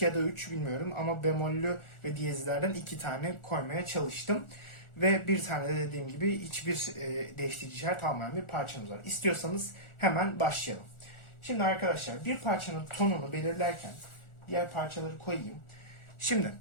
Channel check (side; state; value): right; late; 1.4 ms